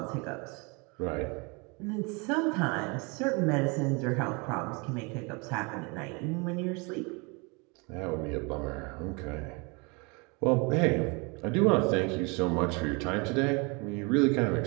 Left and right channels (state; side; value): quieter; left; 30.0 dB